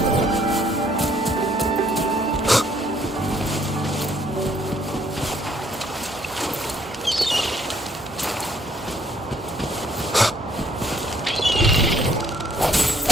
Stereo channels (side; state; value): both; normal; correlation 0.66